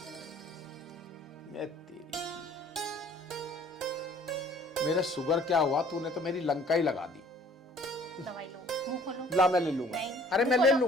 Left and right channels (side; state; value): both; normal; correlation 0.55